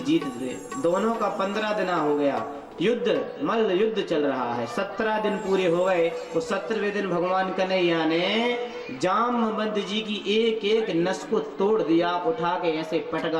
जीतते। दोनों का 15 दिन हो गया, युद्ध मल्ल युद्ध चल रहा है। 17 दिन पूरे हो गए। तो 17वें दिन भगवान कन्हैया ने जामवंत जी की एक एक नस को तोड़ दिया, उठा के ऐसे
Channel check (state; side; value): identical; both; correlation 1.00